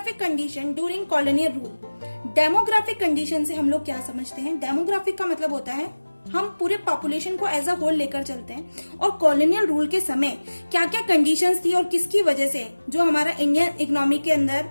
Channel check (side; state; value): both; inverted; correlation -1.00